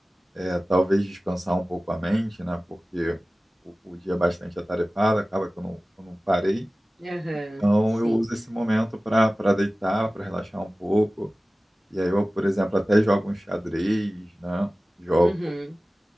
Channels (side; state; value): both; normal; correlation 0.97